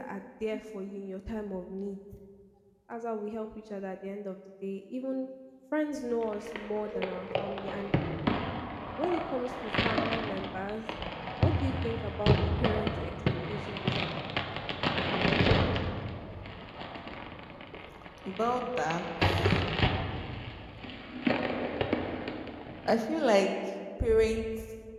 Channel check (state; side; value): identical; both; correlation 1.00